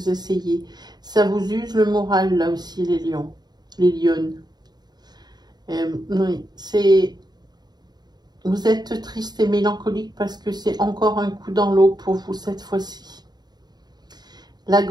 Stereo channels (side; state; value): left; late; 0.20 ms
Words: essayez. Ça vous use le moral, là aussi, les lions, les lionnes. Oui, c'est... Vous êtes triste et mélancolique parce que c'est encore un coup dans l'eau pour vous cette fois-ci. Là,